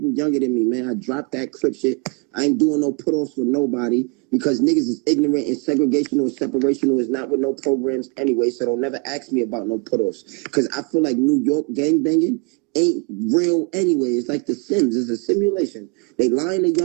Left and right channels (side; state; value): left; quieter; 31.9 dB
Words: younger than me, man. I dropped that Crip shit. I ain't doing no put-offs with nobody because niggas is ignorant and segregational and separational is not with no programs anyway, so don't never ask me about no put-offs because I feel like New York gangbanging ain't real anyway. It's like The Sims. It's a simulation. They lying to